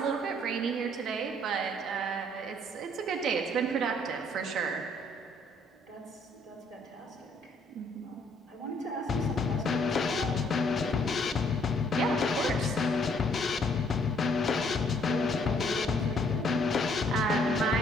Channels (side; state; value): both; normal; correlation 0.65